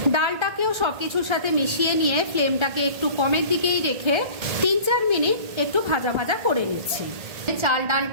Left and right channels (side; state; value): left; late; 1.3 ms